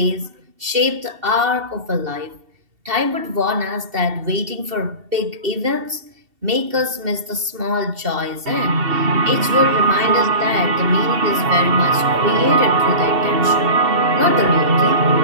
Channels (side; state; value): left; late; 2.7 ms